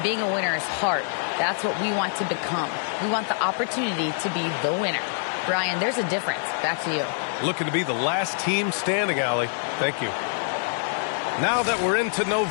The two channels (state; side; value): silent; right; 62 dB below the other